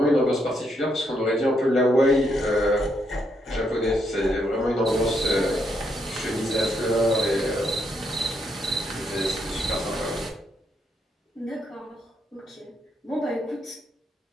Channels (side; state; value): both; normal; correlation 0.77